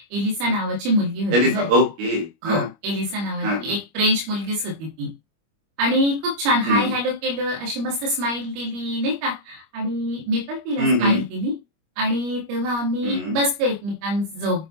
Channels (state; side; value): late; left; 25 ms